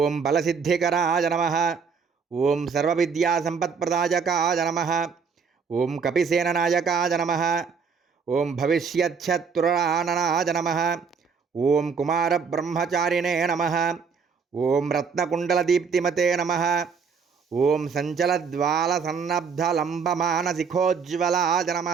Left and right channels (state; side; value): quieter; left; 5.8 dB